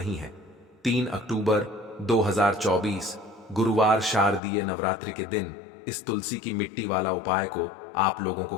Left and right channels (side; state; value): right; drops out; at 4.4 s